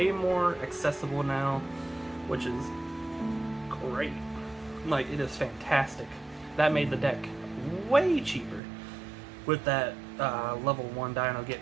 more accessible now, which is great. Like, it is fantastic. That made the deck way cheaper with that level 1 Dino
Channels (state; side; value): drops out; left; at 8.6 s